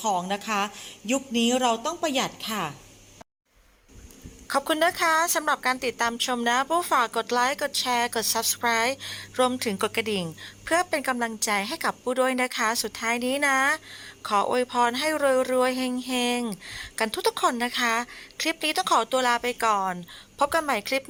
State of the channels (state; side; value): identical; both; correlation 1.00